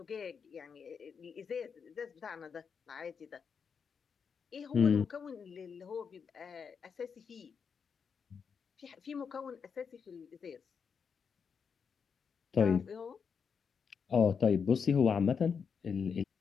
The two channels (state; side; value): quieter; right; 6.3 dB